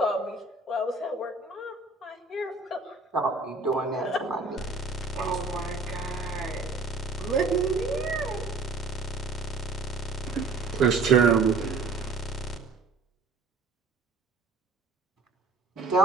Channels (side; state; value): left; quieter; 3.7 dB